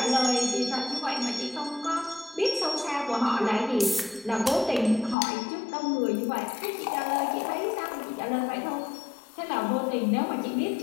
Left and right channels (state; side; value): drops out; right; at 5.2 s